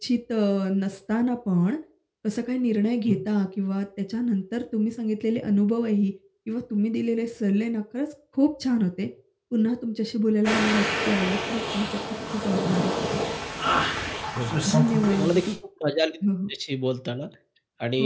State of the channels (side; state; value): both; identical; correlation 1.00